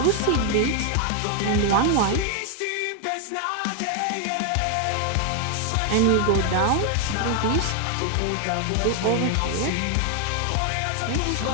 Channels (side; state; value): both; different; correlation 0.01